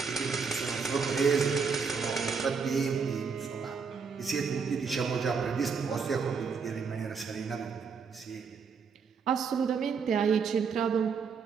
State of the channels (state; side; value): quieter; left; 5.6 dB